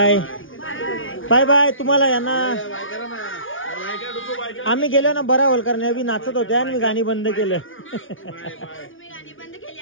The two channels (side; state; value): right; late; 0.57 ms